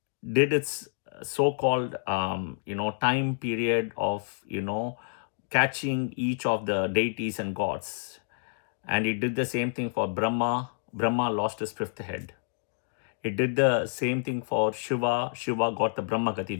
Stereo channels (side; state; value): right; silent; digital silence